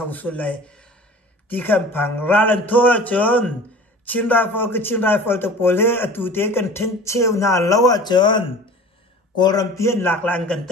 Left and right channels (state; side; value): normal; both; correlation 0.42